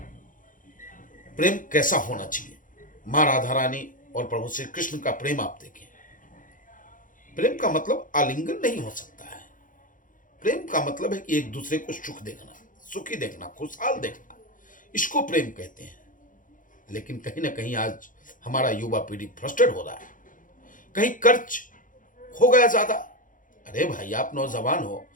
प्रेम कैसा होना चाहिए। मां राधा रानी और प्रभु श्री कृष्ण का प्रेम आप देखें। प्रेम का मतलब आलिंगन नहीं हो सकता है। प्रेम का मतलब है कि एक दूसरे को सुख देखना, सुखी देखना, खुशहाल देखना, इसको प्रेम कहते हैं। लेकिन कहीं ना कहीं आज हमारा युवा पीढ़ी फ्रस्ट्रेट हो रहा है। कहीं कर्ज हो गया ज्यादा। अरे भाई, आप नौजवान हो,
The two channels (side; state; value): right; late; 0.39 ms